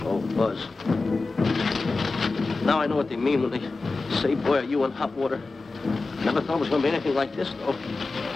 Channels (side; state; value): right; quieter; 3.6 dB